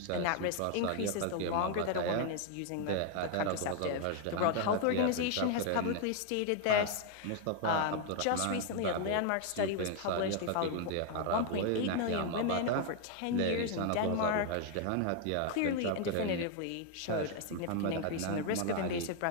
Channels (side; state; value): both; different; correlation 0.00